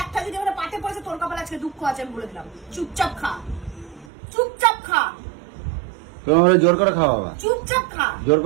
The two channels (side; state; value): left; drops out; at 4.0 s